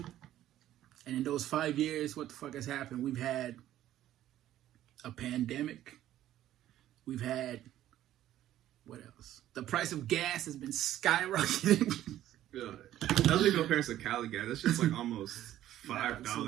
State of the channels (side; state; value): left; quieter; 12.9 dB